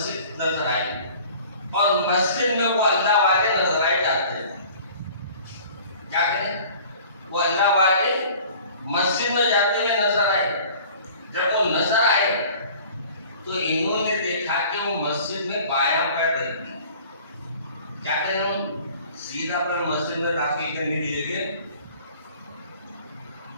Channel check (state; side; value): inverted; both; correlation -0.48